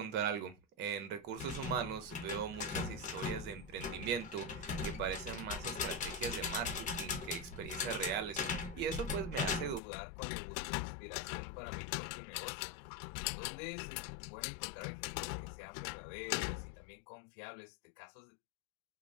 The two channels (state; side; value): drops out; right; at 9.8 s